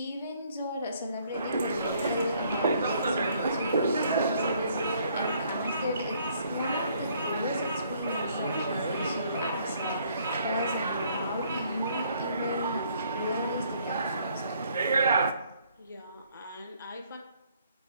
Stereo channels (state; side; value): inverted; both; correlation -0.65